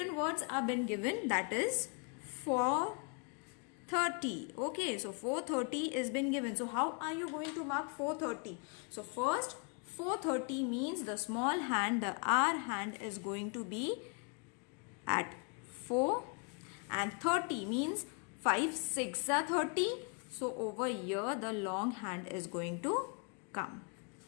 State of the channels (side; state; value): right; quieter; 36.3 dB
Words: words are been given, that is 4:30. Okay, so 4:30 is been given. So how are you going to mark 4:30? So first 4:30 means the small hand, the R hand is going to be at 4, and 30 means 5 6 are 30. So over here the long hand is going to come.